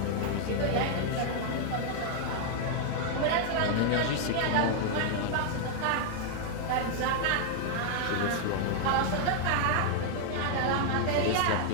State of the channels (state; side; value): different; both; correlation -0.01